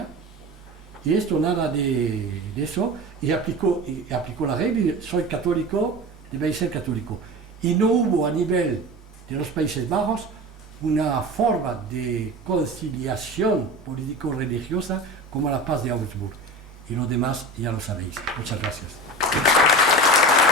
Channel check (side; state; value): both; normal; correlation 0.31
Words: y esto nada de eso, y aplicó la regla, soy católico, debéis ser católico. Y no hubo a nivel de los Países Bajos una forma de conciliación político-religiosa como la paz de Augsburg. Y lo demás ya lo sabéis. Muchas gracias.